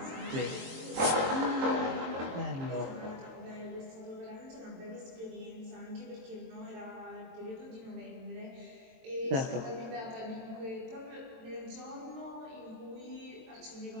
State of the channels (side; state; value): left; late; 22 ms